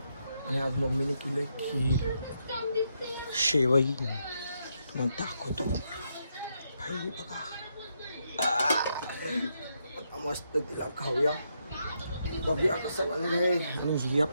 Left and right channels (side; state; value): both; inverted; correlation -0.79